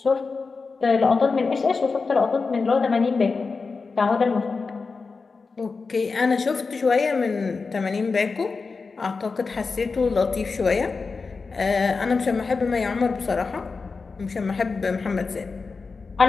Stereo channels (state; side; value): quieter; right; 4.5 dB